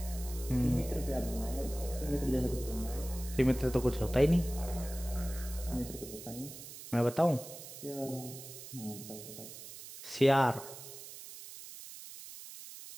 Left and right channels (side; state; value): right; noise; hiss, 13 dB below the sound